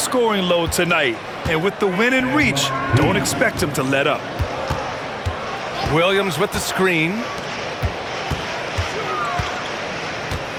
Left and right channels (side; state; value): both; identical; correlation 1.00